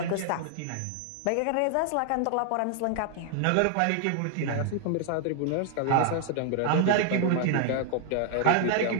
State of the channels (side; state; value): both; different; correlation 0.00